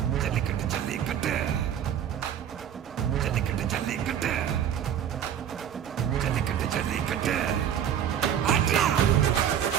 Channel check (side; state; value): left; quieter; 9.4 dB